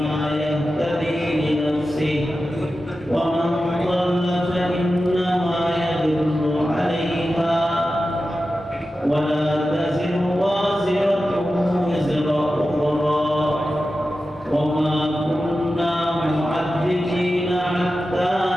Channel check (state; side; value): normal; both; correlation 0.93